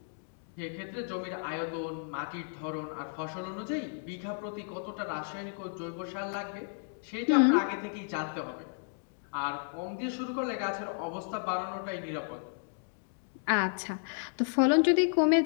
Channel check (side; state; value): right; silent; digital silence